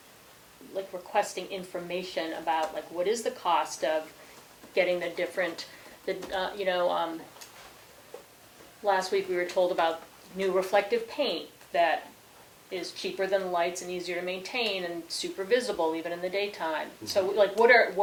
like, requesting information about, like, what is the cost of getting the different, last week we were told about new reflective paint that is cheaper than the lights and easier to maintain and super visible even in the daytime. So, like, what are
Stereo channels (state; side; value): identical; both; correlation 1.00